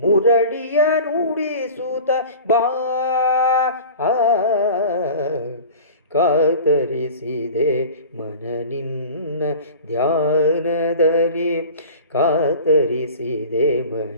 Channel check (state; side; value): inverted; both; correlation -0.39